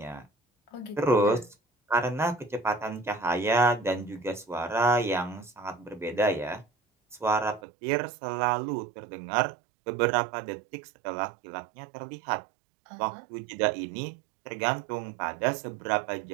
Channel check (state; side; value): drops out; left; at 7.6 s